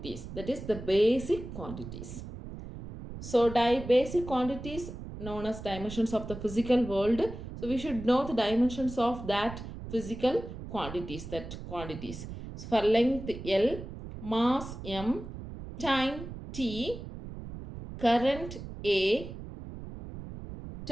That is the basic quantities. So basic quantities known as dimensions of the physical world. So we should know the dimensions of that physical quantities. So for length L, mass M, time T, current A,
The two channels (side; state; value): right; noise; rumble, 11 dB below the sound